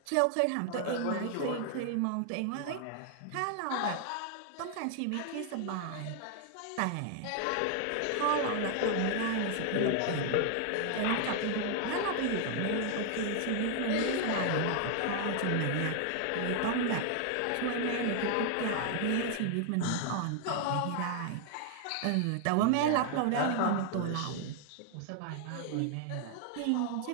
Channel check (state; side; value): different; both; correlation 0.00